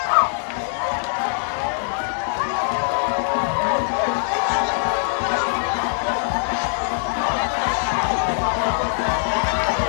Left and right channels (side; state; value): right; silent; digital silence